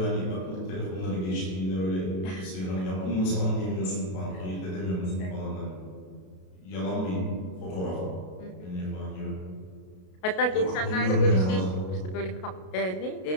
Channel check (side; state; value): right; late; 33 ms